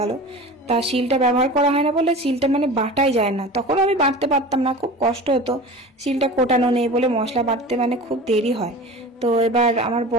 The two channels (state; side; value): normal; both; correlation 0.35